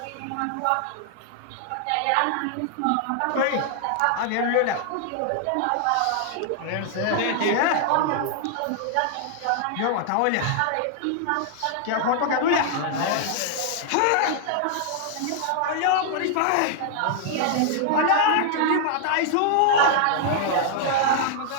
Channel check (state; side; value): different; both; correlation -0.01